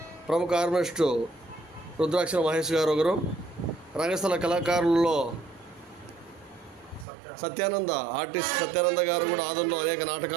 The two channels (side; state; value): left; drops out; at 7.1 s